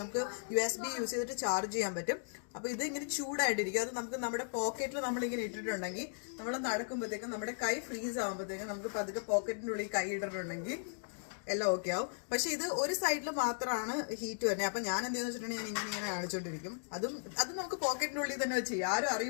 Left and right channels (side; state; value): right; silent; digital silence